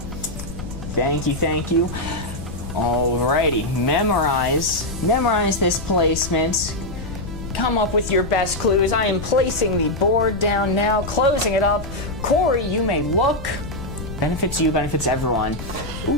Thank you. Alrighty, memorize this placement. Come up with your best clues. I am placing the board down now, closing it up. Corey, you may look. Benefits you, benefits everyone.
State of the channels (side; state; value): left; noise; rumble, 9 dB below the sound